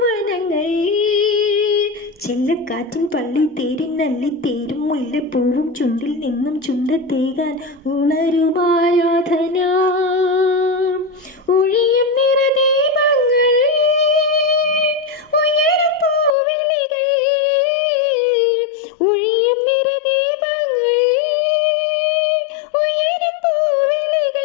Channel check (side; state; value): right; drops out; at 16.4 s